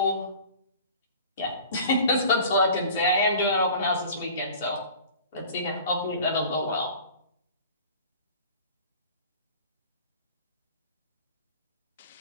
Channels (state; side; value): inverted; both; correlation -0.43